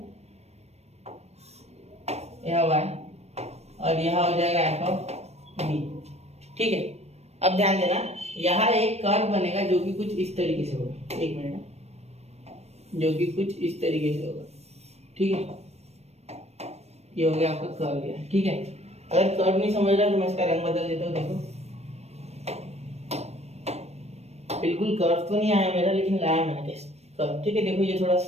यह y और यहाँ हो जाएगा f ऑफ b, ठीक है। अब ध्यान देना, यहाँ एक कर्व बनेगा जो कि कुछ इस तरीके से होगा, एक मिनट, जो कि कुछ इस तरीके से होगा, ठीक है। ये हो गया आपका कर्व, गया, ठीक है। अगर कर्व नहीं समझ रहा तो मैं इसका रंग बदल देता हूँ, देखो बिल्कुल कर्व तो नहीं आया मेरा, लेकिन लाया मैंने कर्व, ठीक है। देखो ये थोड़ा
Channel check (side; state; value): left; late; 0.31 ms